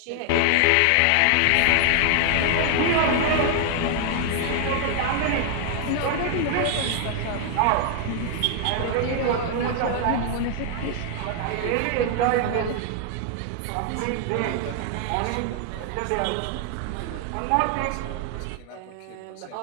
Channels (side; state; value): both; different; correlation 0.00